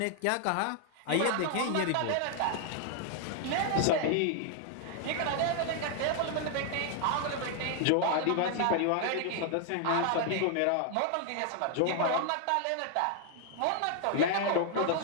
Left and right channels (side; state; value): both; different; correlation 0.00